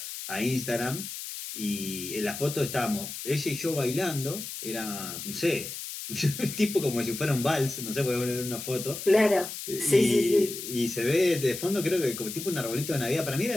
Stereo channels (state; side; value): noise; left; hiss, 8 dB below the sound